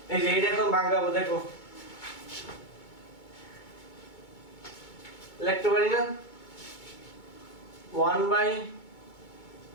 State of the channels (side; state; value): right; late; 2.2 ms